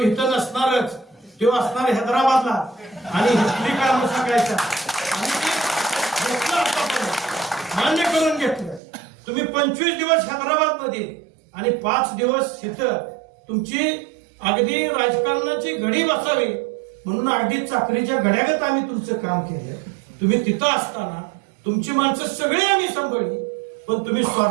नसणारच, तो असणार हैदराबादला आणि इथली कामं सांगायचा. मान्य करून घेतलं. तुम्ही 25 दिवस हैदराबाद मध्ये आणि 5 दिवस इथं तुमची अगदी राजकारणाची घडी बसावी म्हणून अगदी चाकरीच्या घड्यागत आम्ही तुमचं काम केलं. तुम्ही तिथं असताना तुमची माणसं सगळी आम्ही सांभाळली, पण तुम्ही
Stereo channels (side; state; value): left; drops out; at 8.8 s